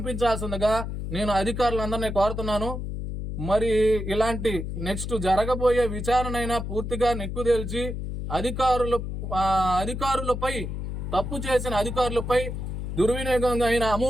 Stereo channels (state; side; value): noise; left; hum, 5 dB below the sound